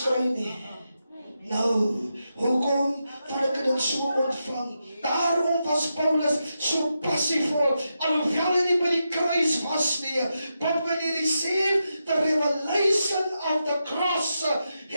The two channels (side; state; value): both; inverted; correlation -0.87